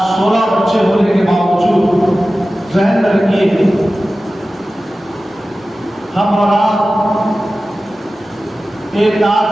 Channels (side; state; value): both; normal; correlation 0.95